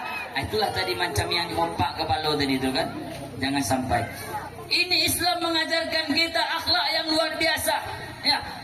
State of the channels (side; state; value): both; identical; correlation 1.00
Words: itulah tadi macam yang mompak kepala tadi itu kan. Jangan sampai. Ini Islam mengajarkan kita akhlak yang luar biasa. Ya,